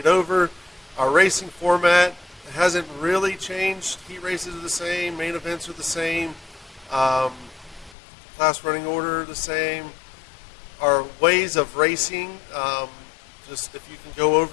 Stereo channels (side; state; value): right; drops out; at 8.0 s